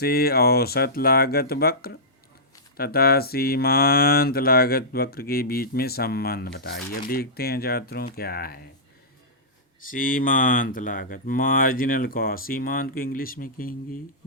औसत लागत वक्र तथा सीमांत लागत वक्र के बीच में संबंध बताइए। अब देखते हैं छात्रों क्या है सीमांत लागत, मार्जिनल कॉस्ट। सीमांत को इंग्लिश में कहेंगे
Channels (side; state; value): both; normal; correlation -0.16